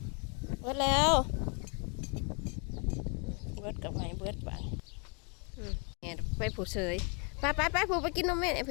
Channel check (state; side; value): quieter; right; 35.2 dB